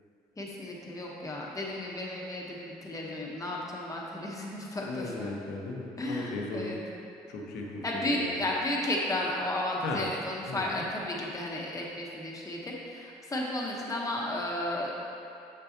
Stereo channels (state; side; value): normal; both; correlation 0.44